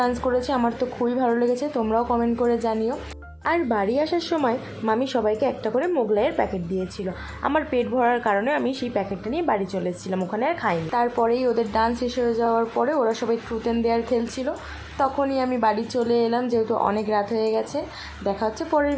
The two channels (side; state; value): both; identical; correlation 1.00